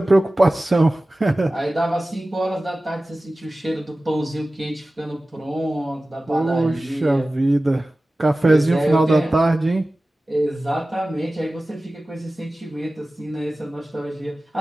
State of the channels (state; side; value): normal; both; correlation 0.97